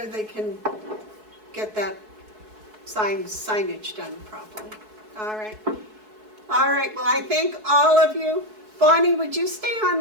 they can get that signage done properly. All right. All right, well, I thank all of you. Bonnie, would you stay on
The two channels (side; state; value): left; late; 4.6 ms